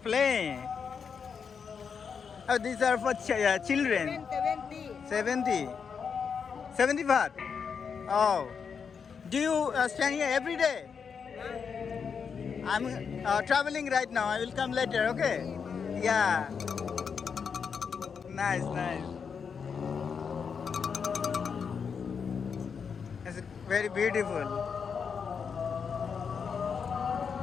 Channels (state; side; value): quieter; right; 6.3 dB